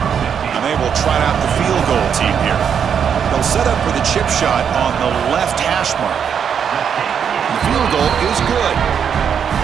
And they will try out the field goal team here. They'll set up for the chip shot on the left hash mark. The field goal is good.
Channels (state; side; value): quieter; left; 7.6 dB